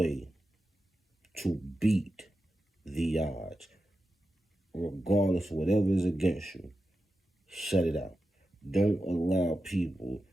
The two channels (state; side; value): normal; both; correlation 0.90